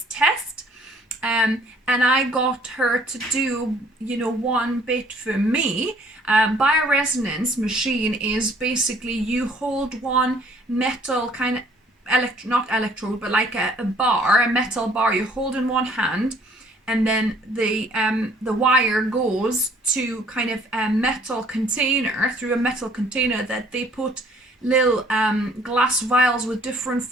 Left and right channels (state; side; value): normal; both; correlation 0.59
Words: test. And I got her to do, one bit for me. Bioresonance machine is basically you hold one metal kind of not electrode, but like a metal bar. You hold in one hand, and then the wire goes to kind of a metal container, through a metal container that they put little glass vials with different